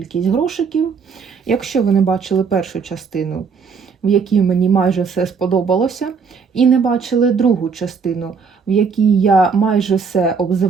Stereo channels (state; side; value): quieter; left; 5.6 dB